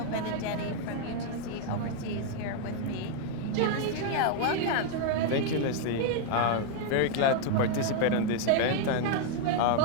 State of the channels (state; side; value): different; both; correlation 0.00